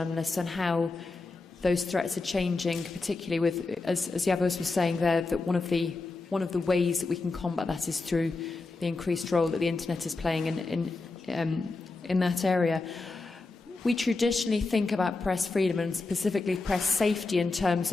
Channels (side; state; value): right; quieter; 3.6 dB